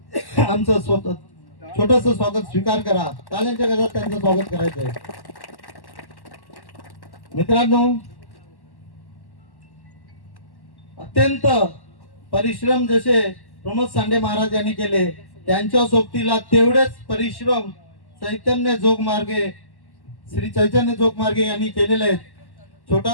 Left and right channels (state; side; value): late; right; 1.1 ms